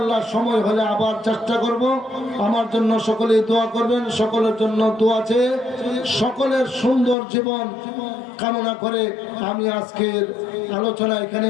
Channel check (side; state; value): right; drops out; at 7.2 s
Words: সময় হলে আবার চেষ্টা করব। আমার জন্য সকলেই দোয়া করবেন, সকলের জন্য দোয়া চেয়ে সকলের সুন্দর জীবন কামনা করে আমি আজকের আলোচনা এখানে